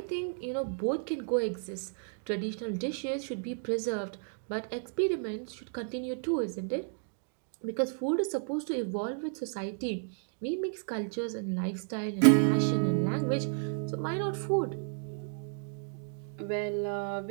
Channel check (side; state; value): left; silent; 56 dB below the other